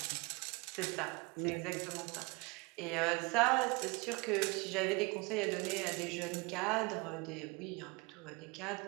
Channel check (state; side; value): quieter; left; 27.0 dB